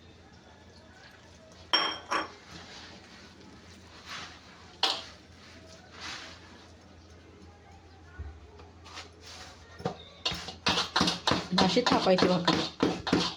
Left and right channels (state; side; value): identical; both; correlation 1.00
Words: अशी थापायची भाकरी.